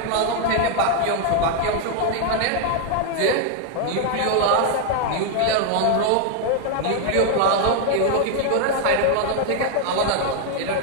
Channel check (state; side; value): different; both; correlation 0.00